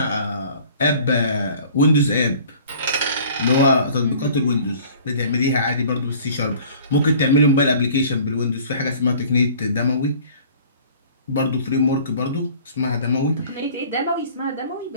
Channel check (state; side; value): inverted; both; correlation -0.50